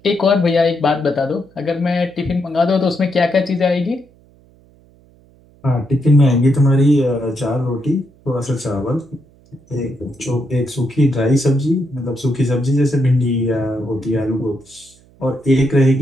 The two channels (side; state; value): right; noise; hum, 29 dB below the sound